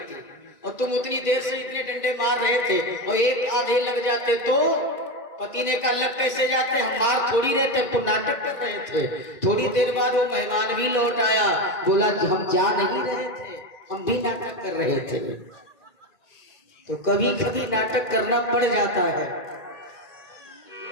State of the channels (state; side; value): late; right; 2.3 ms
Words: थी, और तुम उतनी देर से इतने डंडे मार रहे थे, और एक आधे लग जाते तो। पति ने कहा लग कैसे जाते, हम मार थोड़ी रहे थे, तुम नाटक कर रहे थे। थोड़ी देर बाद वो मेहमान भी लौट आया, बोला कि हम जा नहीं रहे थे, हम भी नाटक कर रहे थे। तो कभी कभी नाटक करना पड़ जाता है।